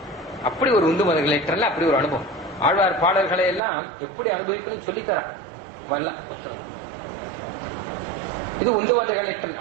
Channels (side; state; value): left; drops out; at 3.6 s